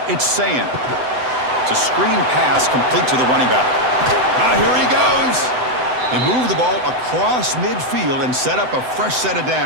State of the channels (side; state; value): left; late; 7.9 ms